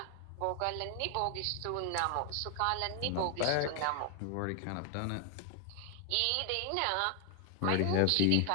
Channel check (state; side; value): different; both; correlation 0.00